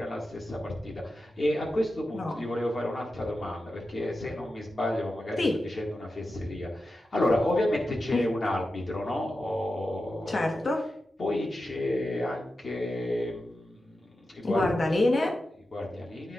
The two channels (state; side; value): normal; both; correlation 0.91